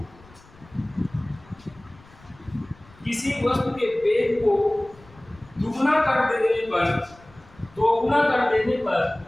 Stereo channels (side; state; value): left; noise; rumble, 25 dB below the sound